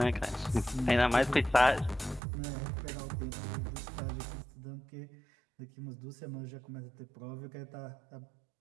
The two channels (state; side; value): drops out; left; at 2.2 s